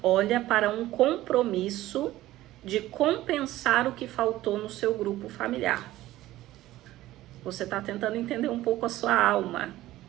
olha para um compromisso de compensar o que faltou no seu grupo familiar. Você está tentando entender um pouco a sua alma.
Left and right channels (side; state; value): left; quieter; 15.7 dB